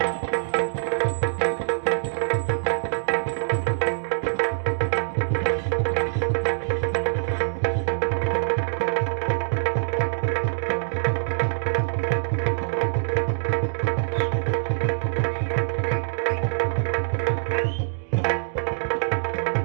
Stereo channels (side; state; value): left; silent; digital silence